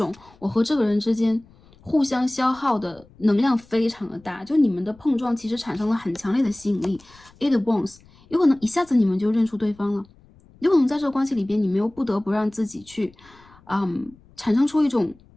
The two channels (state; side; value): noise; left; rumble, 27 dB below the sound